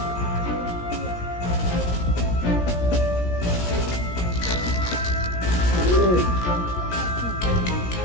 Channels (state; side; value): late; right; 17 ms